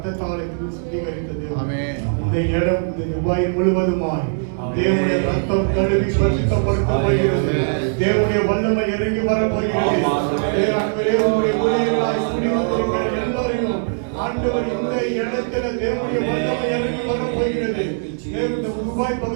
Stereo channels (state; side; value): silent; left; digital silence